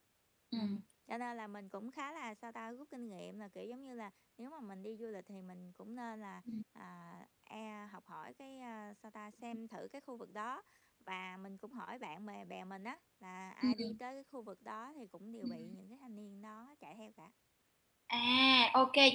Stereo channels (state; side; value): identical; both; correlation 1.00